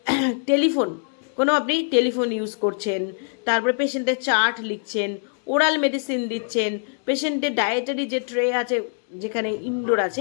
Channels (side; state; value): right; silent; digital silence